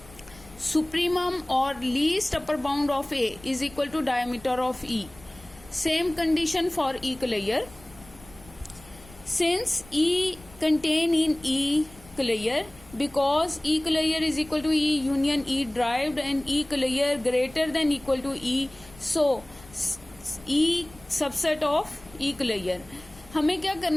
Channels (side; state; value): left; noise; rumble, 22 dB below the sound